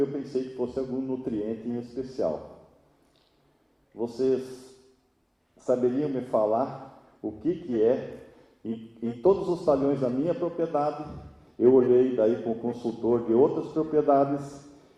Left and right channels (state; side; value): identical; both; correlation 1.00